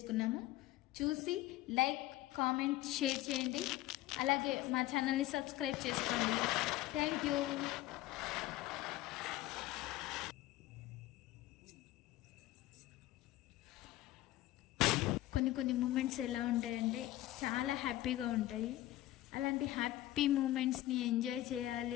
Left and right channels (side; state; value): right; quieter; 15.7 dB